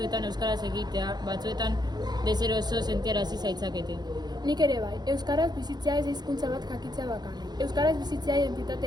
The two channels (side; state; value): left; late; 0.20 ms